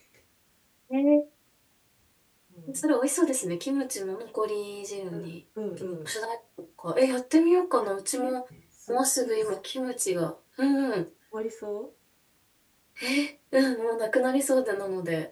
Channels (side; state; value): both; identical; correlation 1.00